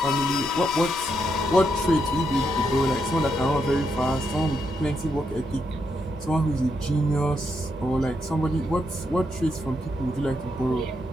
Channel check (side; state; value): both; normal; correlation 0.80